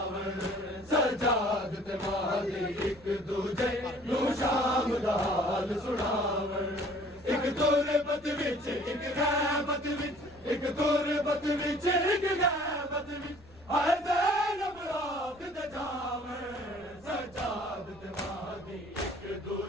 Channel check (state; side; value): noise; left; rumble, 24 dB below the sound